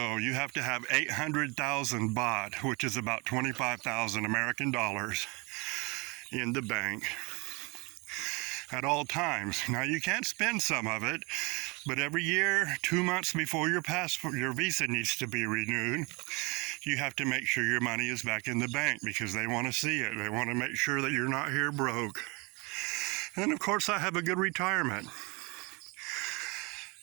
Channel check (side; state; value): left; quieter; 28.2 dB